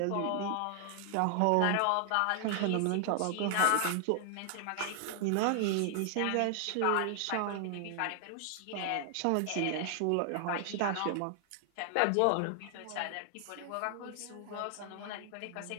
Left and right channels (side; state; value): both; different; correlation 0.00